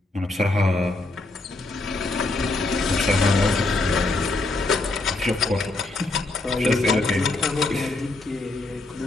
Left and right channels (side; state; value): right; quieter; 3.1 dB